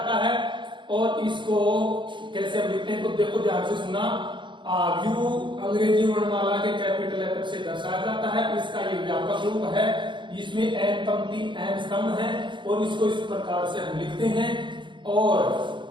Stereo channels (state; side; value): late; left; 0.23 ms